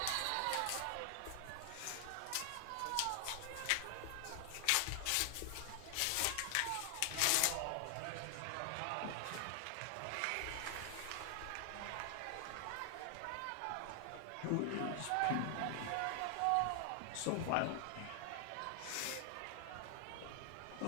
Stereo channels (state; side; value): different; both; correlation 0.00